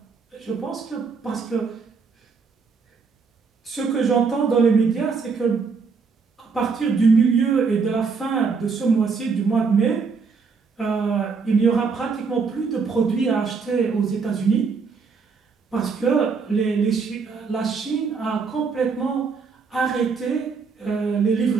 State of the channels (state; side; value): quieter; left; 5.1 dB